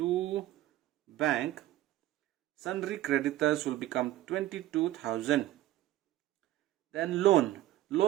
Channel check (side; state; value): left; quieter; 14.8 dB